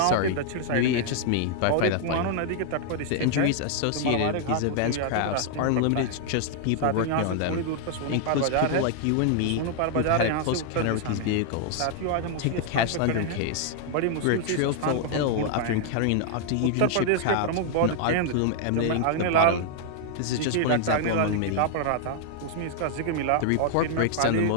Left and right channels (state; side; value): different; both; correlation 0.00